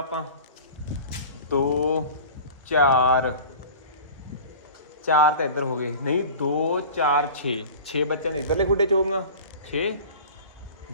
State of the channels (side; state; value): both; inverted; correlation -0.39